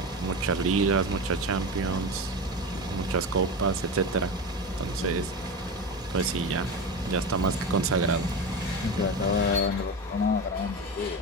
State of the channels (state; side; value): normal; both; correlation 0.23